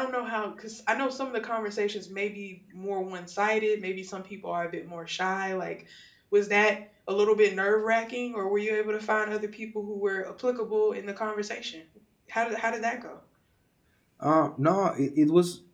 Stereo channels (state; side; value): identical; both; correlation 1.00